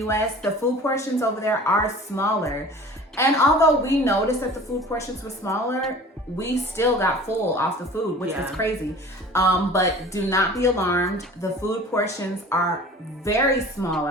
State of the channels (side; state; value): both; normal; correlation 0.43